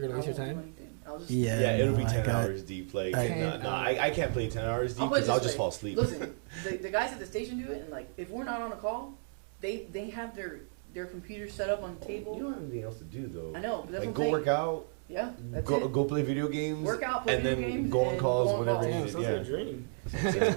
gonna I waste your won't do time? anything. I'll just Yeah, Yeah, it'll be no, 10 I got- hours deep. Like, I- I can't play 10 hours deep I'll put it because I'll this way. just fall asleep. Listen, the guys at the station do it, and like if we're not on a call, they have their computers set up on the You table. don't have anything else to do though. I know, but that's Like, what I'm go saying. work out. Yeah, that's go, it. Go play video games. Work out, play and video then games, go on and calls go on whenever calls. needed, Sounds Yeah. like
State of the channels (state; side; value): silent; left; digital silence